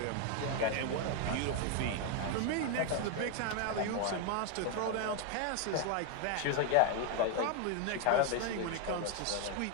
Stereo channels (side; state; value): both; different; correlation 0.01